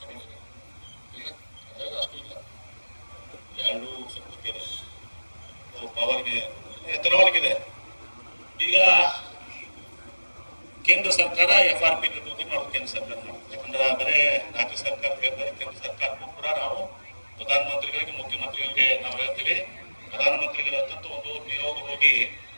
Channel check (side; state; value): both; inverted; correlation -1.00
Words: ಅಷ್ಟು ಇಲ್ಲ, 2 ಸ್ವಲ್ಪ ಇದೆ ಪವರ್ಗೆ, ಎಥನಾಲ್ಗಿದೆ. ಈಗ ಕೇಂದ್ರ ಸರ್ಕಾರ FRP ನಿರ್ವಹಣೆ ಮಾಡೋದು ಕೇಂದ್ರ ಸರ್ಕಾರ ಮಾಡುತ್ತೆ. ಯಾಕಂದ್ರೆ ಬರೇ ರಾಜ್ಯ ಸರ್ಕಾರ ಹೇಳ್ತಾರೆ, ಕೇಂದ್ರ ಸರ್ಕಾರಕ್ಕೂ ಕೂಡ ನಾವು ಪ್ರಧಾನಮಂತ್ರಿಗಳಿಗೆ, ಮುಖ್ಯಮಂತ್ರಿಗಳಿಗೆ ನಾವು ಹೇಳ್ತೀವಿ. ಪ್ರಧಾನಮಂತ್ರಿಗಳ ಹತ್ತಂತ ಒಂದು ನಿಯೋಗ ಹೋಗಿ